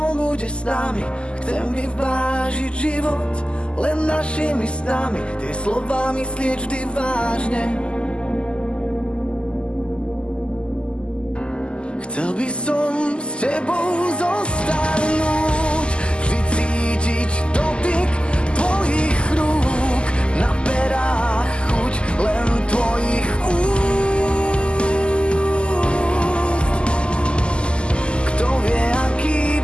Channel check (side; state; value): right; late; 0.051 ms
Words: bude s nami. Chcem vyvážiť život len našimi snami, tie slová myslieť vždy vážne. Chcel by som s tebou zostarnúť, vždy cítiť dotyk tvojich rúk, na perách chuť len tvojich úst. Kto vie,